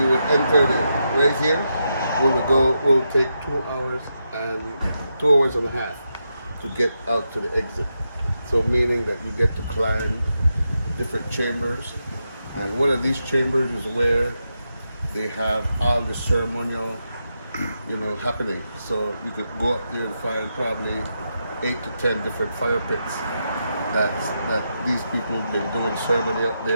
would enter right here, we'll take 2 hours and 2 hours and a half to get out to the exit. So meaning that you get to climb different chambers, and one of these chambers is where they have all the ceremonial, happening. So you could go up there and find probably 8 to 10 different fire pits that these people have been doing ceremony up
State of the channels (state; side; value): inverted; both; correlation -0.85